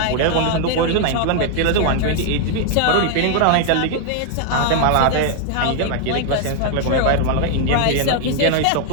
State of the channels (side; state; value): both; different; correlation 0.00